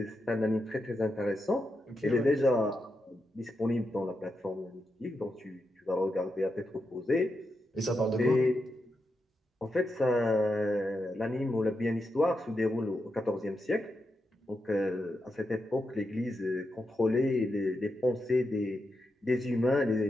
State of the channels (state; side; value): normal; both; correlation 0.86